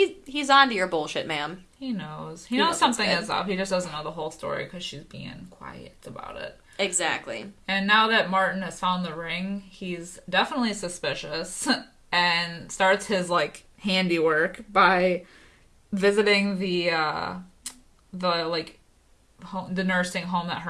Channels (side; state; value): both; identical; correlation 1.00